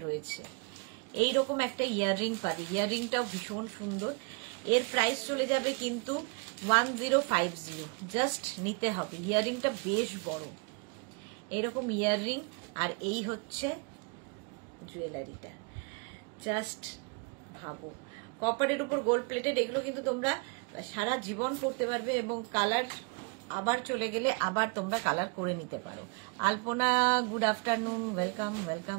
রয়েছে। এইরকম একটা ইয়াররিং পাবে, ইয়াররিংটাও ভীষণ সুন্দর। এর প্রাইস চলে যাবে কিন্তু 1050। জাস্ট নিতে হবে। ইয়াররিংটা বেশ বড়, এইরকম ইয়াররিং। আর এই হচ্ছে জুয়েলারিটা, জাস্ট ভাবো। কপারের উপর গোল্ড প্লেটেড, এগুলো কিন্তু তোমরা সারা জীবন পরতে পারবে এবং কালার আবার চলে গেলে আবার তোমরা কালার করে নিতে পারো। আলপনা, গুড আফটারনুন, ওয়েলকাম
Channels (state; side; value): quieter; left; 33.3 dB